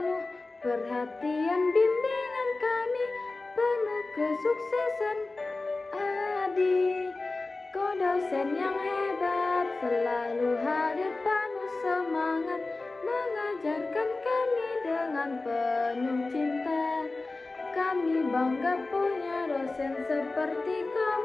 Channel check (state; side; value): quieter; right; 3.4 dB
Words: perhatian, bimbingan kami penuh kesuksesan. Adi, kau dosen yang hebat, selalu hadir penuh semangat, mengajarkan kami dengan penuh cinta. Kami bangga punya dosen seperti